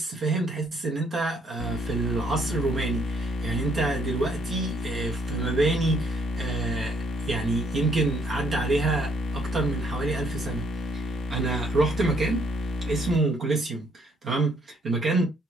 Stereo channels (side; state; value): both; normal; correlation 0.68